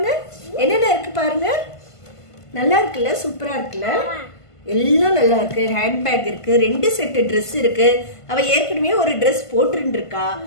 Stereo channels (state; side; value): late; right; 1.5 ms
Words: என்னென்ன இருக்கு பாருங்க. நல்லா இருக்குல்ல? சூப்பரா இருக்குல்ல? எல்லாம் நல்லா இருக்கு. ஹேண்ட்பேக் இருக்கு, 2 செட்டு ட்ரெஸ் இருக்கு. அவ ஏற்கனவே ஒரு ட்ரெஸ் போட்டுட்டு இருக்கா.